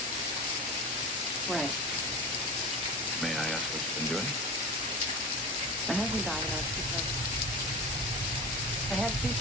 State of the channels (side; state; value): both; normal; correlation 0.31